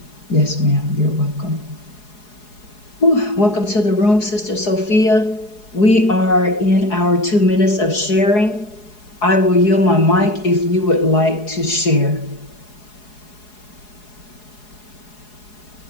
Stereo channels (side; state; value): right; late; 4.8 ms